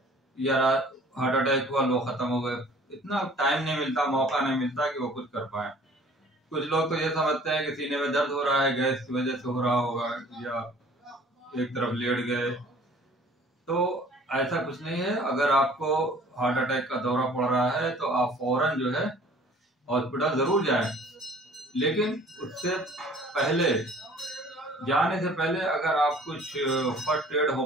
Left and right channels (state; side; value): normal; both; correlation 0.52